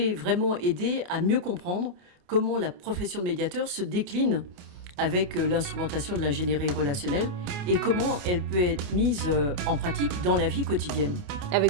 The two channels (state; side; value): late; left; 28 ms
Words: vraiment aider à mieux comprendre comment la profession de médiateur se décline avec l'instrumentation de l'ingénierie relationnelle et comment elle peut être mise en pratique dans la vie quotidienne. Avec